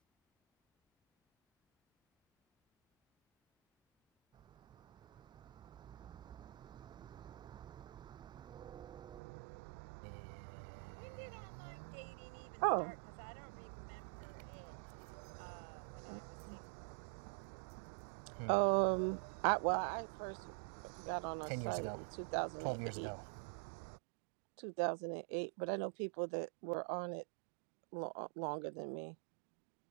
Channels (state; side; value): drops out; left; at 9.2 s